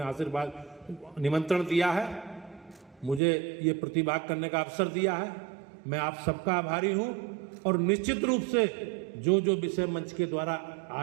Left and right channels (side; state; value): left; drops out; at 3.2 s